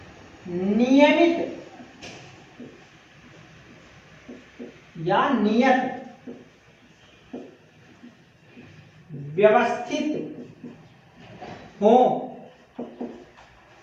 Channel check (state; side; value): identical; both; correlation 1.00